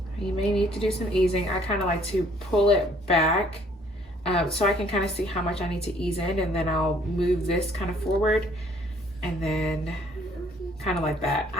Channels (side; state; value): both; normal; correlation 0.61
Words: You may need to do some easing. I kind of like to pull it back so I can kind of see how much I need to ease in, and then I'll move this kind of forward, and then kind of like that.